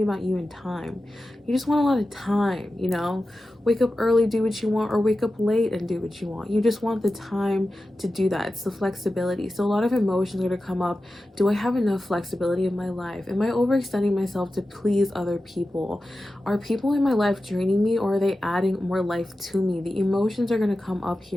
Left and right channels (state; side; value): normal; both; correlation 0.93